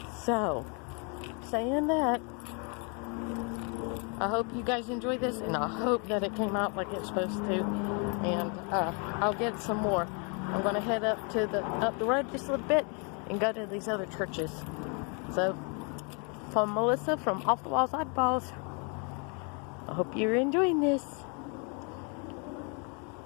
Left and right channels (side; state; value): right; quieter; 35.9 dB